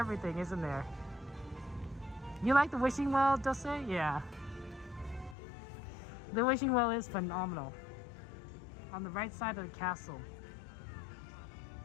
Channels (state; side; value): drops out; right; at 5.4 s